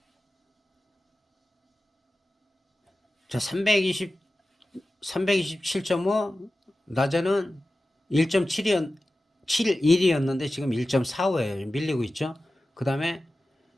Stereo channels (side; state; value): both; normal; correlation 0.95